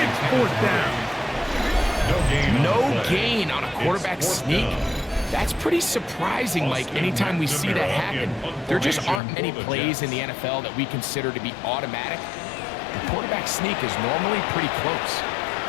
It's 4th down. No gain on a quarterback sneak. That's pretty surprising, Mike, anytime we see that happen. There just aren't many plays in the NFL that we consider to be automatic. The quarterback sneak is normally pretty close.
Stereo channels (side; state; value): right; drops out; at 9.2 s